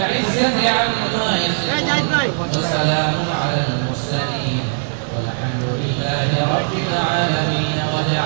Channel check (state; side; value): silent; left; digital silence